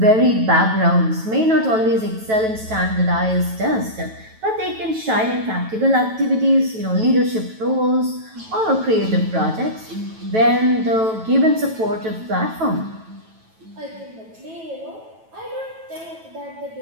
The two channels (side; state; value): left; late; 9.1 ms